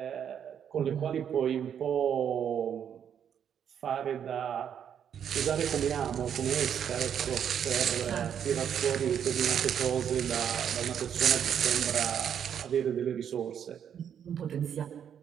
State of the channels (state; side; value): quieter; left; 8.6 dB